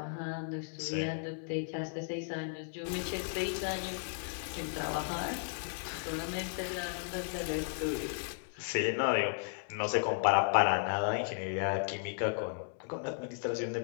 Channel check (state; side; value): silent; right; digital silence